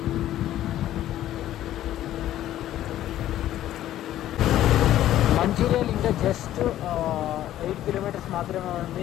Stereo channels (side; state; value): right; quieter; 12.9 dB